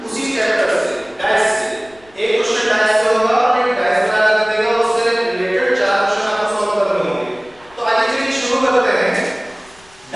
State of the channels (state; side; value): noise; left; rumble, 29 dB below the sound